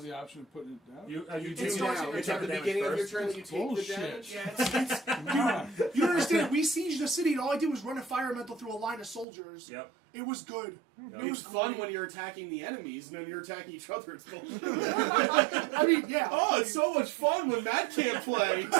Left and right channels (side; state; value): left; drops out; at 9.2 s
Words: the option of putting it down? You You It do starts now. at It's your at the turn. beginning of your Damage turn that you take Bullshit. the damage. Yeah, it's Come on. you don't understand. We sieged the city, and all I did was run a fire elemental through a line of soldiers. Yep. It was good. Yep. It was It's fun great. when you're attacking the enemies and then you're attacking each other. It's bullshit. I mean, yeah. Oh, it's so much fun when Matt can't play.